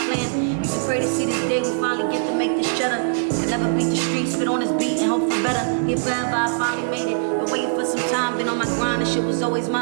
Used to pray to see this day we finally get to make this cheddar. Can never beat the streets, spit on this beat and hope for better. Here forever, I finally made it. Been waiting for some time, been on my grind, and shit was always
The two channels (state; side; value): silent; left; digital silence